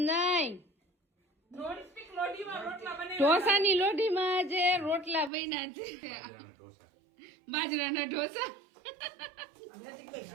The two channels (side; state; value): left; drops out; at 5.3 s